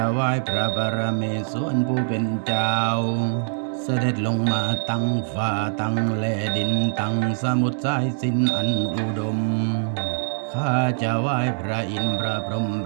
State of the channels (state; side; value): silent; left; 63 dB below the other